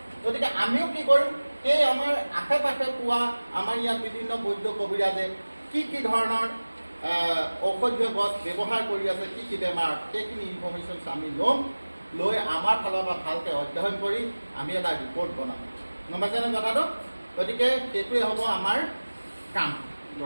গতিকে আমিও কি কৰিম সেই আমাৰ আশে পাশে পোৱা আমাৰ ইয়াত বিভিন্ন বৈদ্য কবিৰাজে কি ধৰণৰ ঔষধীয় গছ ব্যৱহাৰ কৰি আছে কি বেমাৰ সেইখিনি ইনফৰ্মেশ্যন আমি ল'ম লৈ আমাৰ ফালৰ পৰা ভালকৈ অধ্যয়ন কৰি আমি এটা ৰিপৰ্ট বনাম গম পাইছেনে কথাটো গতিকে সেইটোৱে হ'ব আমাৰ কাম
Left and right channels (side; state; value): both; inverted; correlation -1.00